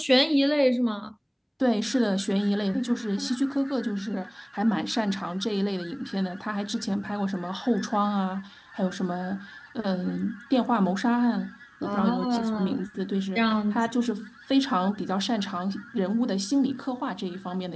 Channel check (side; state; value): both; identical; correlation 1.00